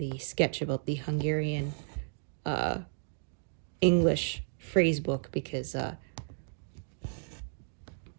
sketch about the Hungarian English phrase book, because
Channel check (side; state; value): left; silent; digital silence